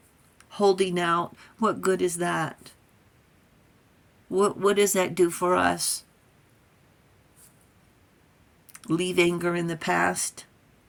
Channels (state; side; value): identical; both; correlation 1.00